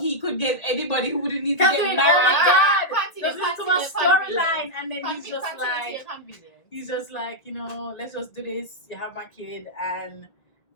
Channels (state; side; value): late; right; 2.0 ms